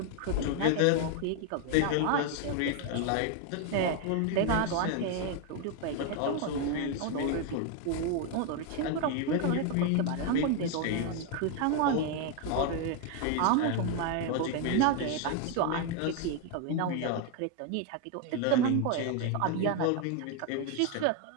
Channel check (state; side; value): different; both; correlation 0.01